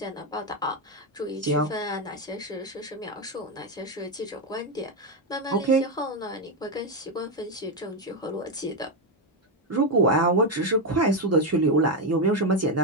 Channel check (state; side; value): normal; both; correlation 0.07